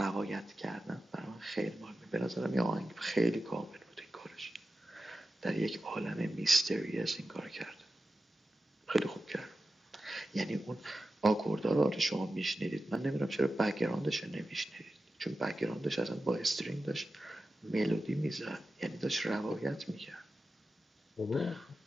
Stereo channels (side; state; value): both; normal; correlation 0.93